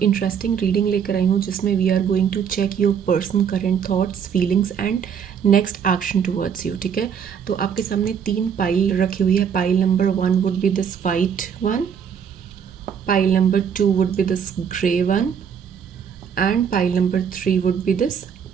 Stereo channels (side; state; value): left; quieter; 7.5 dB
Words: इंटरेस्टिंग रीडिंग लेकर आई हूँ जिसमें we are going to check your person current thoughts feelings and next action towards you. ठीक है, तो आपके सामने 3 पाइल रखी हुई है। Pile number 1 would be this white one, pile number 2 would be this grey one and pile number 3 would be this